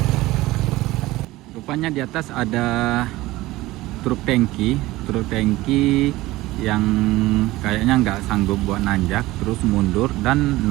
rupanya di atas ada truk tangki yang kayaknya nggak sanggup buat nanjak, terus mundur dan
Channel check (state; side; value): quieter; left; 18.4 dB